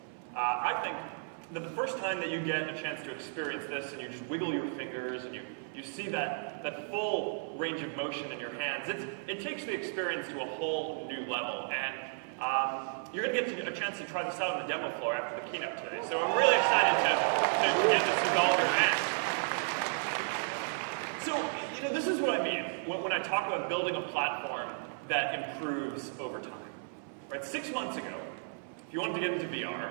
I think that the first time that you get a chance to experience this and you just wiggle your fingers and you see that full range of motion in your hands, it takes the experience to a whole new level. And you're going to get a chance to try this out on the demo floor after the keynote today. So I'm really excited to get this into all of your hands. So, this is what I mean when I talk about building a platform that improves over time. Right? 6 months ago, if you wanted to get into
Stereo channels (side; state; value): left; silent; 55 dB below the other